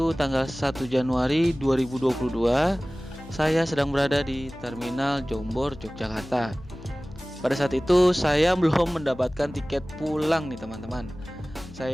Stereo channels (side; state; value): left; noise; hum, 18 dB below the sound